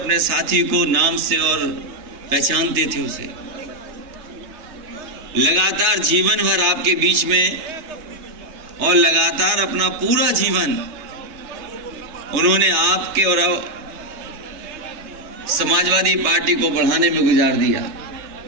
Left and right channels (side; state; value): left; late; 3.3 ms